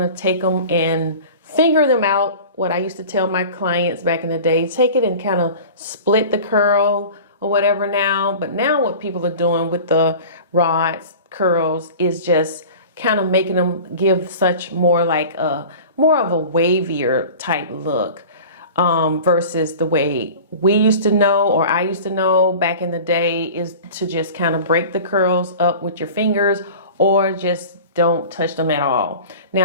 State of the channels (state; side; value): inverted; both; correlation -0.39